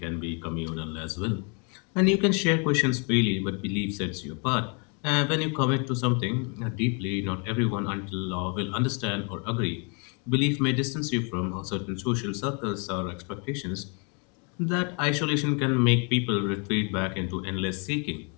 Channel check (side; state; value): right; quieter; 36.2 dB